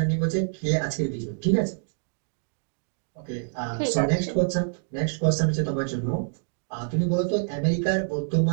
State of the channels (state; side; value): silent; left; digital silence